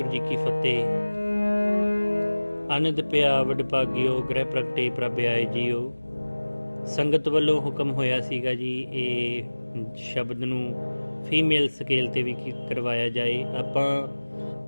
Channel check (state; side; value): inverted; both; correlation -1.00